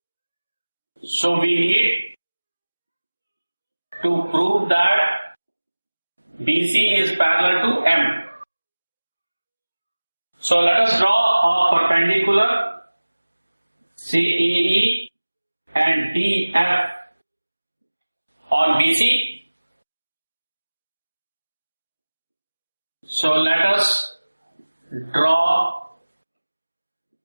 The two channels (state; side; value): inverted; both; correlation -1.00